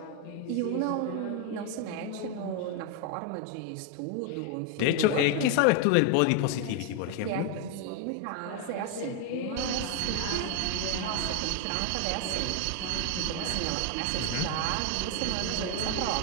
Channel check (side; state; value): both; different; correlation 0.01